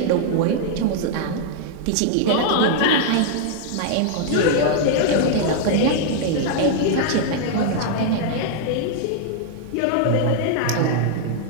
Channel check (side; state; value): both; different; correlation 0.00